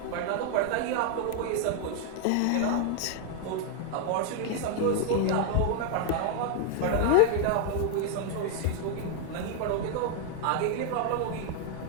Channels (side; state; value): both; different; correlation 0.00